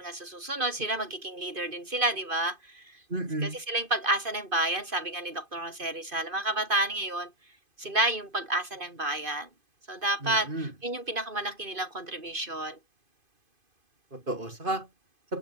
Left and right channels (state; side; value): late; left; 2.5 ms